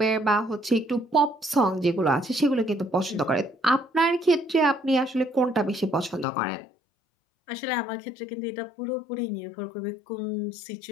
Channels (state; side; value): drops out; right; at 6.2 s